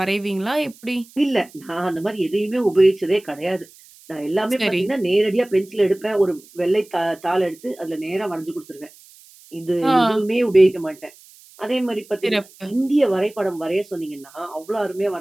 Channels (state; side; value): noise; right; hiss, 24 dB below the sound